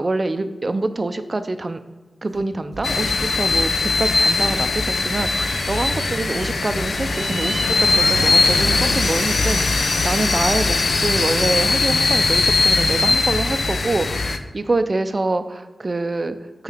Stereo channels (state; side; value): normal; both; correlation 0.93